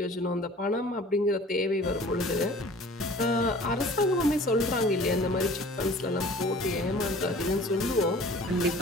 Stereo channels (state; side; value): normal; both; correlation 0.46